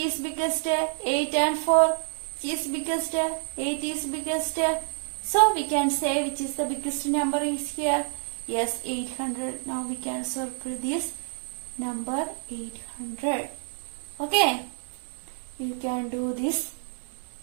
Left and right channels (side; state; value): left; silent; 59 dB below the other